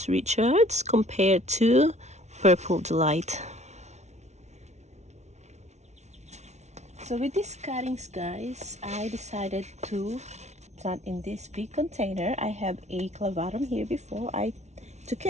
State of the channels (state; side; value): late; left; 0.32 ms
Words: Richards compared to Purple Delight. So with these cuttings, guys, I decided to plant in this big container. I have a clavatum here before. I took